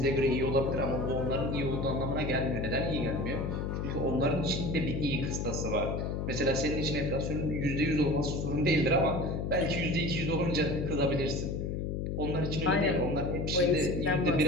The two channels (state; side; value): noise; left; hum, 2 dB below the sound